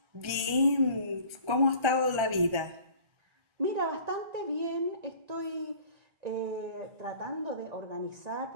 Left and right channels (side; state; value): left; late; 1.4 ms